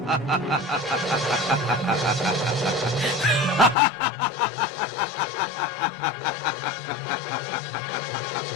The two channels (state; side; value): drops out; right; at 3.8 s